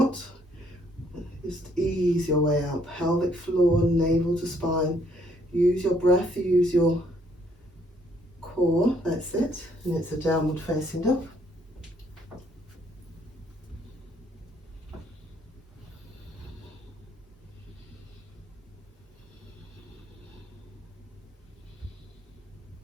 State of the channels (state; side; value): normal; both; correlation 0.67